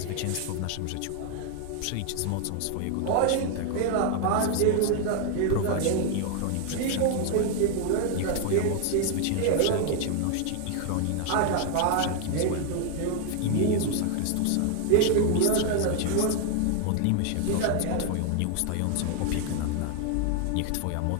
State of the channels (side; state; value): both; different; correlation 0.00